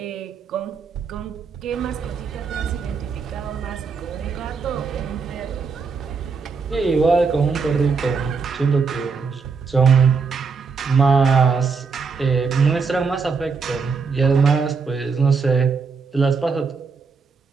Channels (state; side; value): quieter; left; 5.1 dB